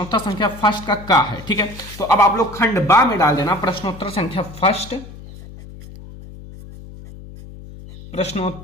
संख्या फर्स्ट का है, ठीक है। तो अब आप लोग खंड बा में डाल देना प्रश्नोत्तर संख्या फर्स्ट,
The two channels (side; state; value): left; noise; hum, 16 dB below the sound